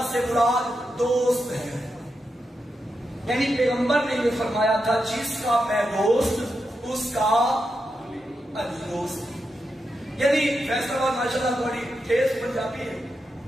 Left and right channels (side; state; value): both; normal; correlation 0.87